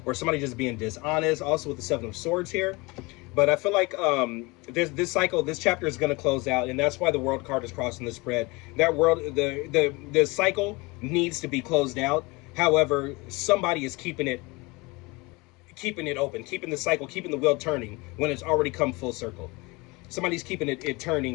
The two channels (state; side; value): quieter; right; 25.0 dB